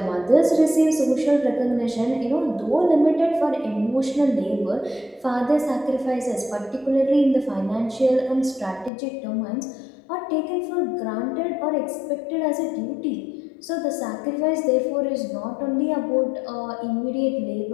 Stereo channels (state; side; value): drops out; right; at 8.9 s